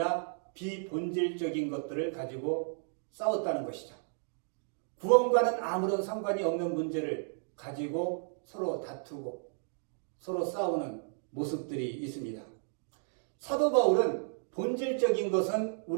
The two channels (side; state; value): left; silent; digital silence